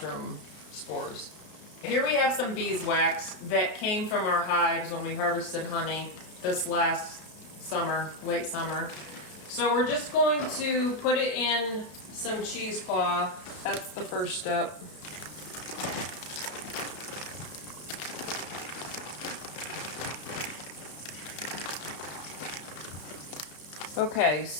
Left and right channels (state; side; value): late; right; 33 ms